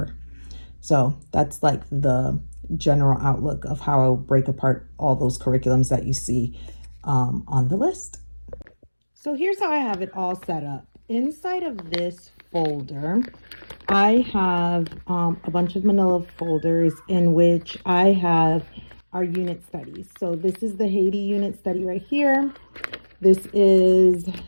So that's like the general outlook of how I'll break apart all those curriculums that you see on the list. So here's how I have it all set up. Inside of this folder, I have a bunch of manila folders in which I have our unit studies. So this is the Haiti unit study right here. This is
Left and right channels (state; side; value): inverted; both; correlation -1.00